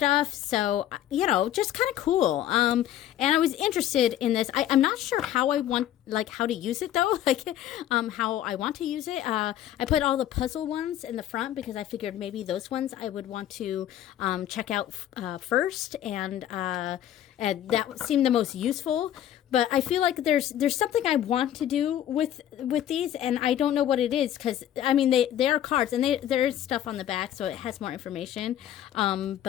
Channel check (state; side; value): quieter; right; 11.6 dB